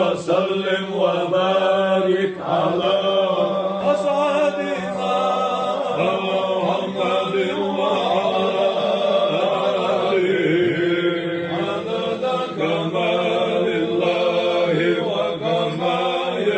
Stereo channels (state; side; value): identical; both; correlation 1.00